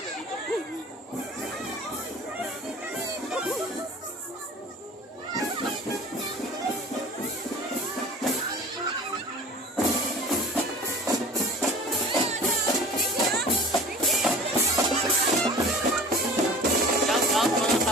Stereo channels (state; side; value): normal; both; correlation 0.42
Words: dito. Shout out mga